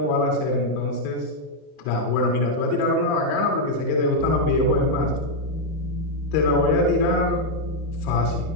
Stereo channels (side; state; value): right; late; 31 ms